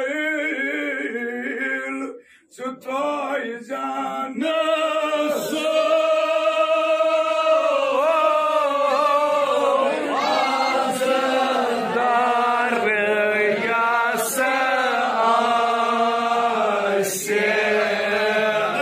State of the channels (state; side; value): identical; both; correlation 1.00